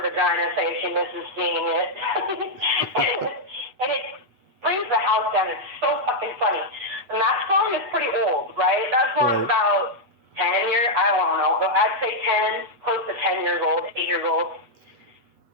vagina, saying she misses seeing it, and it brings the house down. It's so fucking funny. And that song is pretty old, right? That song's about 10 years. I don't know. I'd say 10, close to 10 years old, 8 years old.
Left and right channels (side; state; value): left; late; 8.2 ms